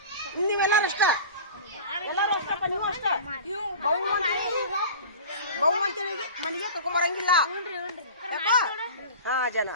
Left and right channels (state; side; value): inverted; both; correlation -0.37